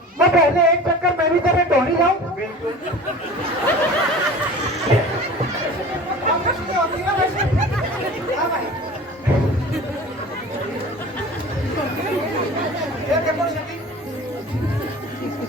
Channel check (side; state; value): both; normal; correlation 0.39